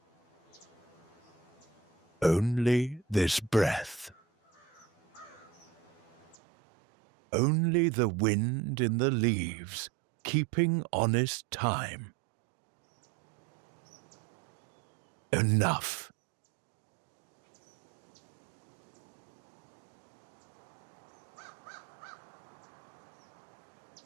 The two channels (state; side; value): drops out; left; at 6.4 s